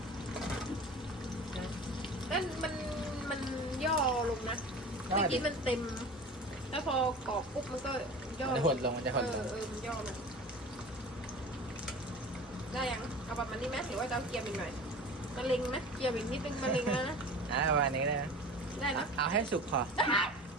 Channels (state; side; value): normal; both; correlation 0.37